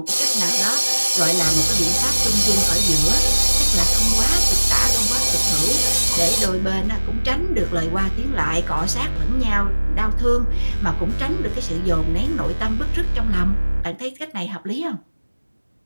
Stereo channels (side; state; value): both; inverted; correlation -1.00